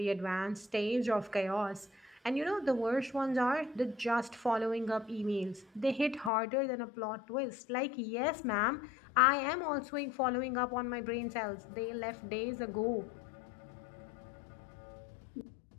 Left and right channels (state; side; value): drops out; right; at 6.3 s